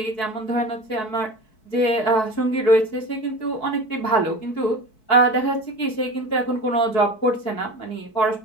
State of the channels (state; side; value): late; right; 4.6 ms